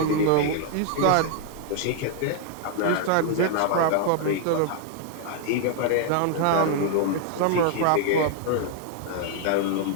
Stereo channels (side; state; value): both; different; correlation 0.00